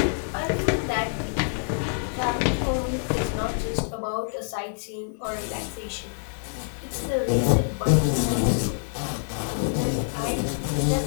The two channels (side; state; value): right; silent; digital silence